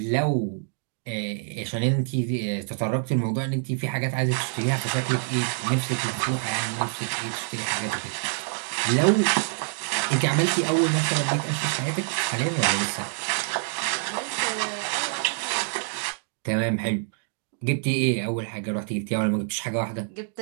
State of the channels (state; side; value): silent; left; 61 dB below the other